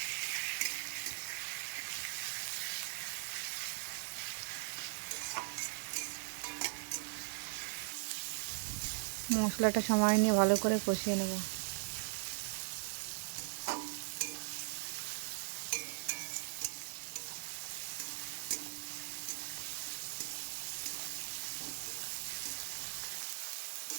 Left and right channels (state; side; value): silent; left; digital silence